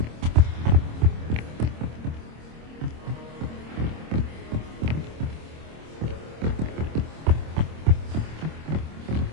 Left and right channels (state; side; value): late; left; 26 ms